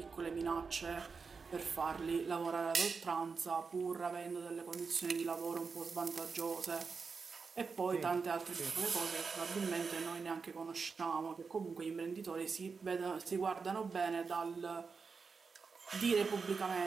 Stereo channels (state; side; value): quieter; left; 5.0 dB